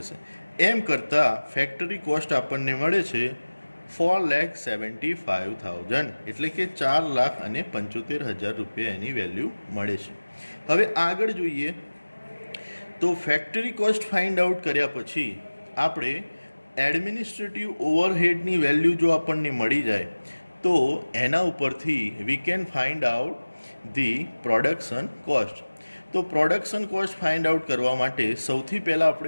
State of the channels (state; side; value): inverted; both; correlation -1.00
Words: એમ કરતાં ફેક્ટરી કોસ્ટ આપણને મળે છે 4,75,000, એટલે કે 4,75,000 રૂપિયા એની વેલ્યુ મળે છે. હવે આગળ જોઈએ તો ફેક્ટરી કોસ્ટ ફાઇન્ડ આઉટ કર્યા પછી આપણે એડમિનિસ્ટ્રેટિવ ઓવરહેડની વેલ્યુ જો આપણને મળી જાય તો એના ઉપરથી we can find out the production cost. તો પ્રોડક્શન કોસ્ટ ફાઇન્ડ આઉટ કરવા માટે સૌથી પહેલાં